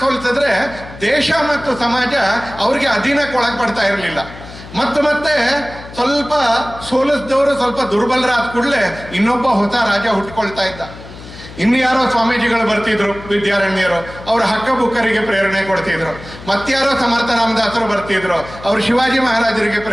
ಸೋಲಿಸಿದ್ರೆ ದೇಶ ಮತ್ತು ಸಮಾಜ ಅವ್ರಿಗೆ ಅಧೀನಕ್ಕೆ ಒಳಪಡ್ತಾ ಇರಲಿಲ್ಲ. ಮತ್ತೆ ಸ್ವಲ್ಪ ಸೋಲಿಸಿದವರು ಸ್ವಲ್ಪ ದುರ್ಬಲರಾದ ಕೂಡಲೇ ಇನ್ನೊಬ್ಬ ಹೊಸ ರಾಜ ಹುಟ್ಕೊಳ್ತಾ ಇದ್ದ. ಇನ್ಯಾರೋ ಸ್ವಾಮೀಜಿಗಳು ಬರ್ತಿದ್ರು, ವಿದ್ಯಾರಣ್ಯರು, ಅವರ ಹಕ್ಕ ಬುಕ್ಕರಿಗೆ ಪ್ರೇರಣೆ ಕೊಡ್ತಿದ್ರು. ಮತ್ಯಾರೋ ಸಮರ್ಥ ರಾಮದಾಸರು ಬರ್ತಿದ್ರು, ಅವರು ಶಿವಾಜಿ ಮಹಾರಾಜರಿಗೆ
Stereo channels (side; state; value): left; noise; hum, 16 dB below the sound